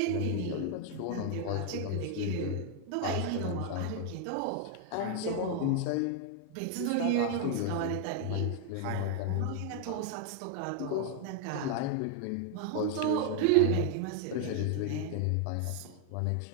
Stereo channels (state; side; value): different; both; correlation 0.00